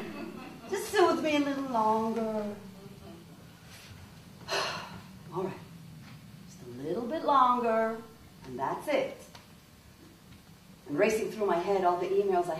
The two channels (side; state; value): both; identical; correlation 1.00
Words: Just soothe me a little longer. All right. Just a little bit longer, and that's it. And racing through my head all the emails I